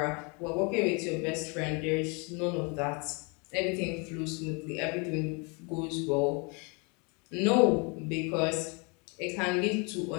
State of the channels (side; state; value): right; quieter; 32.5 dB